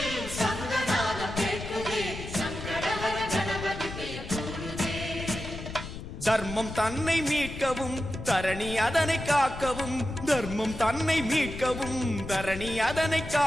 தர்மம் தன்னை மீட்கவும் தரணி அதனை காக்கவும் தர்மம் தன்னை மீட்கவும் தரணி அதனை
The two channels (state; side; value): noise; left; rumble, 9 dB below the sound